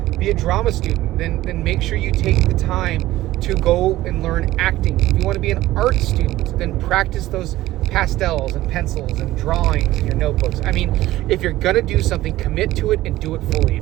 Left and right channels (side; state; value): left; quieter; 16.0 dB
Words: be a drama student, then make sure you take the time to go and learn acting. If you want to be an art student, then practice those pastels and pencils and drawings in your notebooks. I mean, if you're going to do something, commit to it and do it fully.